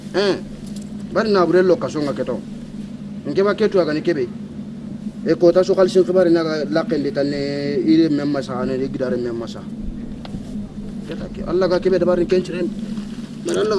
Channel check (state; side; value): identical; both; correlation 1.00